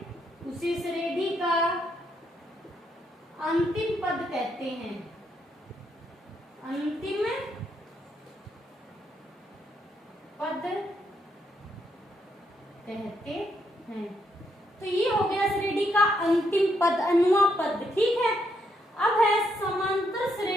उसे श्रेणी का अंतिम पद कहते हैं। अंतिम पद कहते हैं। तो ये हो गया श्रेणी का अंतिम पद, अनुआ पद। ठीक है? अब है समांतर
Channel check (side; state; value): both; normal; correlation 0.76